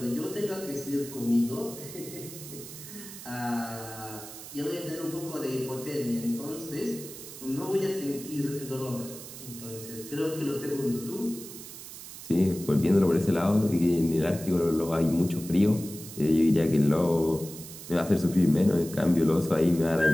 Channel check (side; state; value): right; noise; hiss, 13 dB below the sound